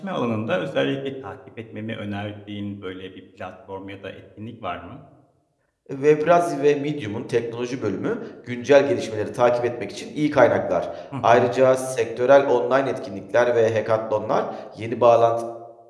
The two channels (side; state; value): both; identical; correlation 1.00